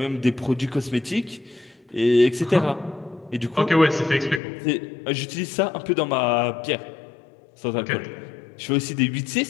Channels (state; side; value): drops out; right; at 4.4 s